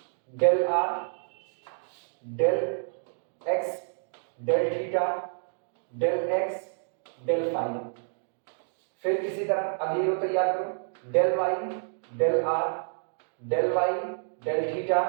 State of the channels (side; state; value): left; silent; digital silence